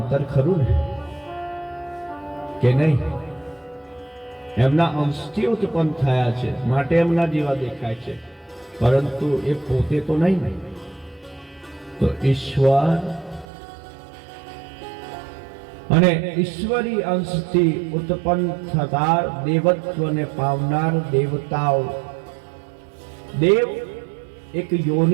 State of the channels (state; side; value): drops out; left; at 13.5 s